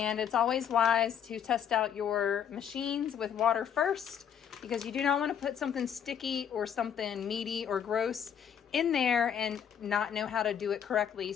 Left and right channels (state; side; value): quieter; right; 8.5 dB